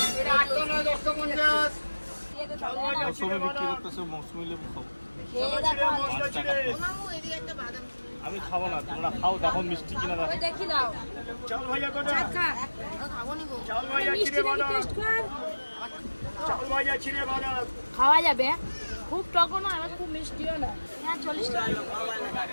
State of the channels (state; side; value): inverted; both; correlation -1.00